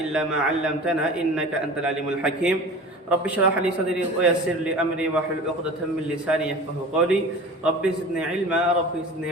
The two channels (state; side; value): normal; both; correlation 0.38